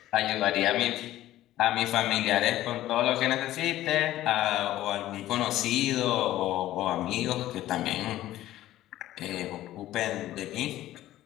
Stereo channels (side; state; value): right; quieter; 14.4 dB